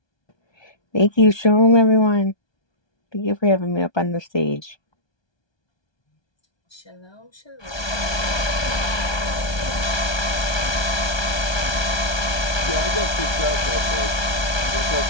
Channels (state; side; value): late; right; 1.2 ms